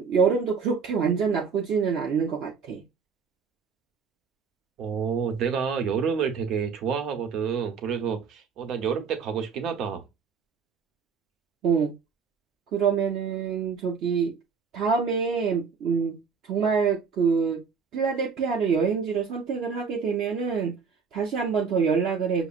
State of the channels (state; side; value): quieter; left; 5.8 dB